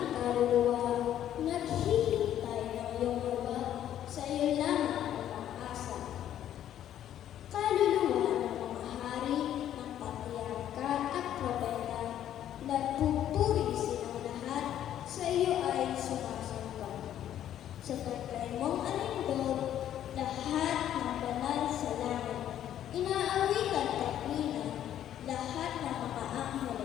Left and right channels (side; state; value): right; quieter; 11.1 dB